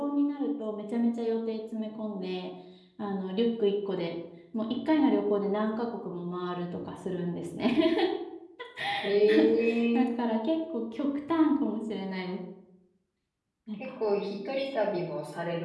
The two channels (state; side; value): identical; both; correlation 1.00